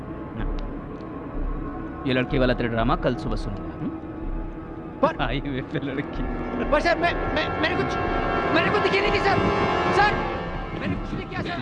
ये लड़की वाला तेरा ड्रामा कल सुबह सुनूंगा। पर हाईवे पे लड़की। पर सर मैंने कुछ दिखी नहीं थी सर। सर मैंने कुछ नहीं किया सर।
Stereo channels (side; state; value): both; identical; correlation 1.00